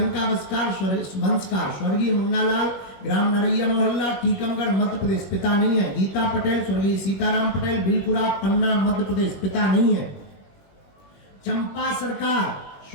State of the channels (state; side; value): late; right; 21 ms